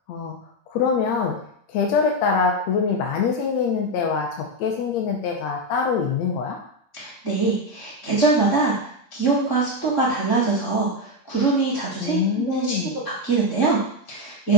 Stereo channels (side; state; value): right; late; 8.6 ms